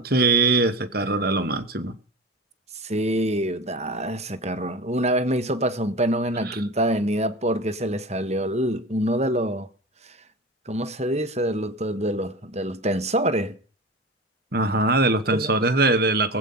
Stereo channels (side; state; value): both; normal; correlation 0.30